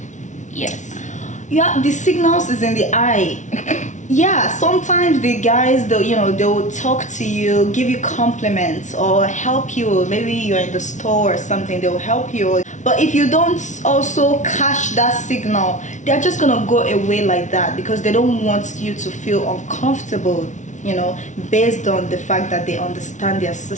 Yes. Yeah, the signals is in the eye. Yeah, sometimes the guys, they'll talk to you, give you compliments, or help you. Maybe you're in the store or something, they'll help you. But if you don't also catch that signal, they're just gonna go away like that, because they don't want you to feel uncomfortable, you know, based on the fact that they understand their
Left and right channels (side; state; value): right; late; 0.36 ms